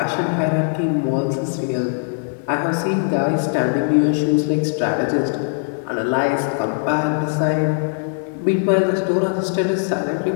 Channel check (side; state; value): right; silent; digital silence